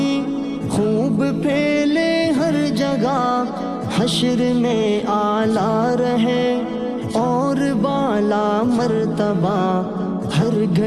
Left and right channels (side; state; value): both; identical; correlation 1.00